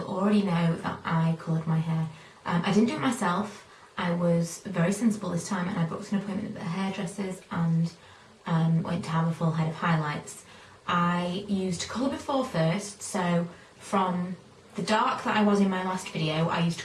already know that I coloured my hair. I didn't do it myself. I was very sensible this time and I booked an appointment at the hairdressers and went to have a full head of highlights. I used Colour Before first, so from the dark that I was in my last video, I used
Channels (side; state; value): both; identical; correlation 1.00